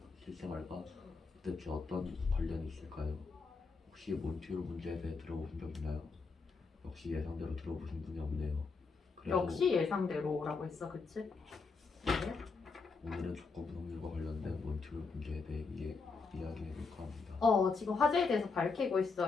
실생활과 대체 어떤 관련이 있을까요? 혹시 몬티올 문제에 대해 들어보신 적 있나요? 역시 예상대로 들어보신 분이 없네요. 그래도 역시 예상대로라고 했어. 그치? 네. 오늘은 조건부 확률과 관련된 몬티올 문제에 대해 이야기해볼까 합니다. 지금 화제에 대해서 밝히고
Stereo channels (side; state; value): right; quieter; 4.5 dB